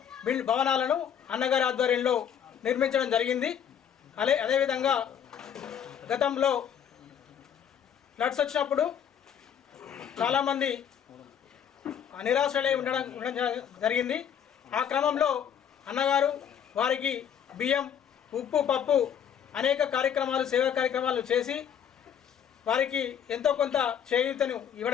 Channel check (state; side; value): quieter; right; 8.6 dB